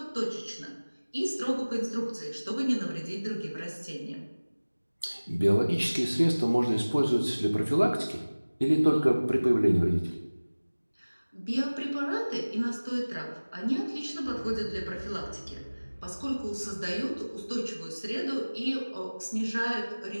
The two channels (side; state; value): both; inverted; correlation -1.00